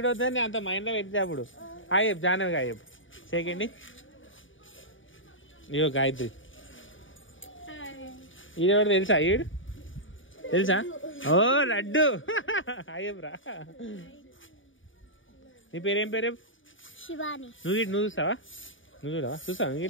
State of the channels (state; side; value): late; right; 0.57 ms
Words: వద్దని అంత మైండ్ లో పెడితే అప్పుడు. హాయ్ చెప్ జానవ్, హాయ్ చెప్. సెకండ్ ఇయో గాయత్రి. ఈడెవరు తెలుసా? ఈడు తెలుసా? ఓ లడ్డు. హాయ్ రా. నీ పేరేం పేరు? శివాని. నువ్వు చూస్తావా? నువ్వు చూడవా? చూస్తావా